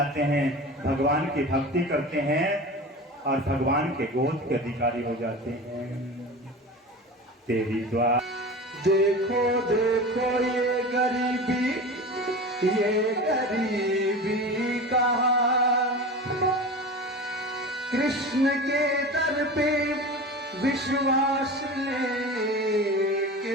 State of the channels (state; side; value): normal; both; correlation 0.32